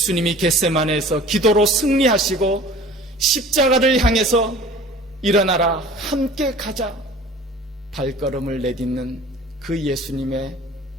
겟세마네에서 기도로 승리하시고 십자가를 향해서 일어나라, 함께 가자, 발걸음을 내딛는 그 예수님의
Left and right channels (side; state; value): both; normal; correlation 0.45